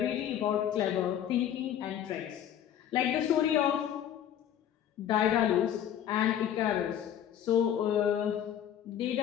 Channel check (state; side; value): quieter; right; 10.2 dB